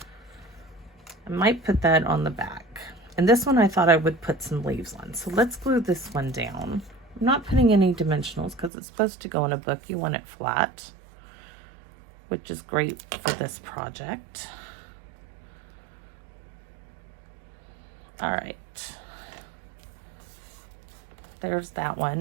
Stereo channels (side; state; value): left; drops out; at 8.7 s